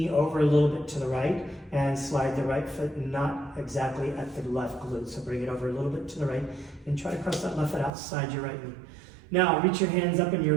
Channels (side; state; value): left; drops out; at 7.9 s